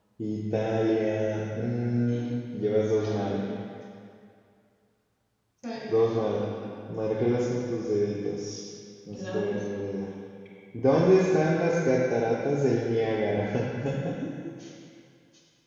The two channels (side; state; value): both; identical; correlation 1.00